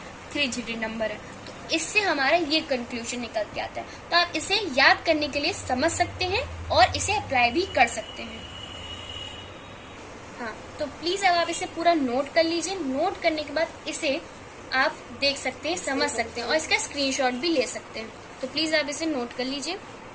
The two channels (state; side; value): identical; both; correlation 1.00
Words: 3 डिजिट नंबर है। तो इससे हमारा ये कंक्लूजन निकल के आता है। तो आप इसे याद करने के लिए समझ सकते हैं और इसे अप्लाई भी कर सकते हैं। हाँ, तो प्लीज अब आप इसे पूरा नोट कर लीजिए। नोट करने के बाद इसे आप देख सकते हैं, समझ सकते हैं और इसका स्क्रीनशॉट भी ले सकते हैं। तो प्लीज आप इसे नोट कर लीजिए,